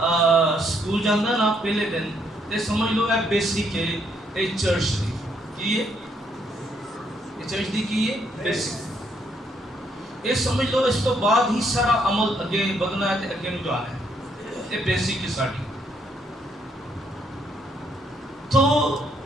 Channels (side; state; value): both; normal; correlation 0.72